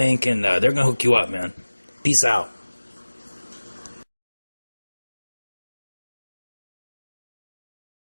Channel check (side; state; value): both; inverted; correlation -1.00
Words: and they're going to hook you up, man. Peace out.